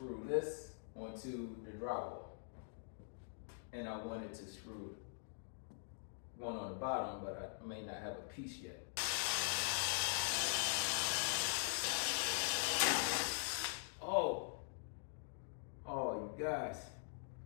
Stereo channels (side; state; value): right; silent; digital silence